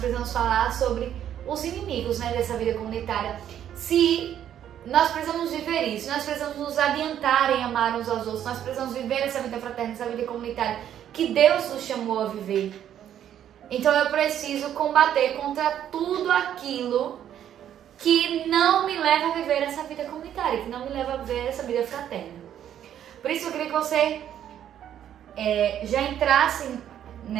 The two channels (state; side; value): quieter; left; 10.3 dB